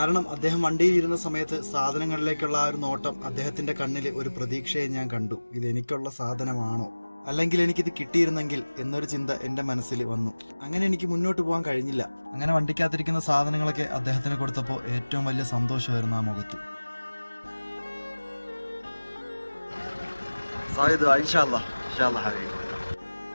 അദ്ദേഹം വണ്ടിയിൽ ഇരുന്ന സമയത്ത് സാധനങ്ങളിലേക്കുള്ള ആ ഒരു നോട്ടം അദ്ദേഹത്തിന്റെ കണ്ണിൽ ഒരു പ്രതീക്ഷയെ ഞാൻ കണ്ടു. ഇത് എനിക്കുള്ള സാധനമാണോ, അല്ലെങ്കിൽ എനിക്കിത് കിട്ടിയിരുന്നെങ്കിൽ എന്നൊരു ചിന്ത എന്റെ മനസ്സിൽ വന്നു. അങ്ങനെ എനിക്ക് മുന്നോട്ട് പോകാൻ കഴിഞ്ഞില്ല. അങ്ങനെ വണ്ടിക്കകത്തിരിക്കുന്ന സാധനങ്ങളൊക്കെ അദ്ദേഹത്തിന് കൊടുത്തപ്പോൾ ഏറ്റവും വലിയ സന്തോഷമായിരുന്നു ആ മുഖത്ത്.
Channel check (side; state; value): both; inverted; correlation -1.00